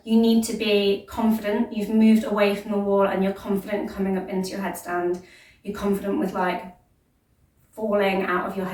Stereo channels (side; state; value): both; identical; correlation 1.00